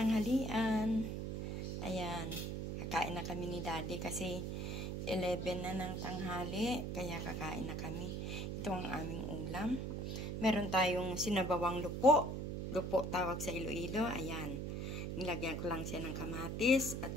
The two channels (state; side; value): noise; right; hum, 3 dB below the sound